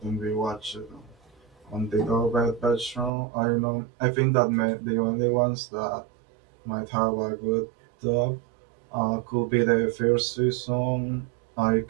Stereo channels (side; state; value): left; drops out; at 3.1 s